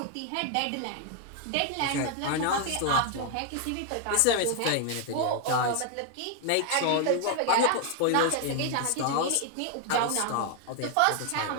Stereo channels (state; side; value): different; both; correlation 0.00